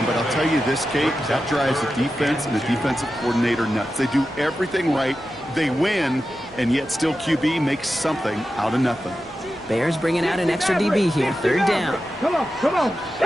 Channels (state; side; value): normal; both; correlation 0.92